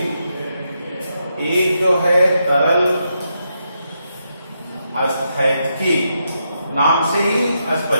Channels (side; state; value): both; inverted; correlation -0.82